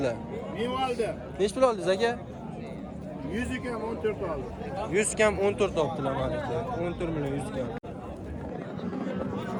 Men oldim. Nechi pul oldingiz aka? 100 kam 14 oldim. 100 kam 14 olibdilar mana aka. 14 million 100 kam.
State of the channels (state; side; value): identical; both; correlation 1.00